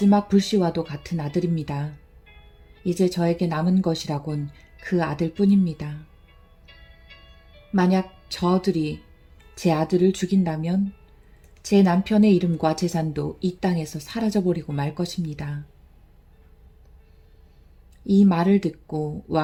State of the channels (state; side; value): identical; both; correlation 1.00